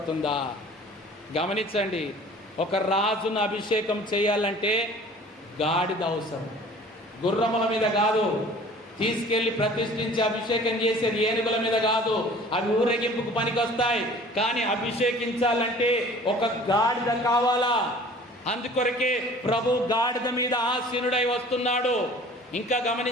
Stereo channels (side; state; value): both; normal; correlation 0.47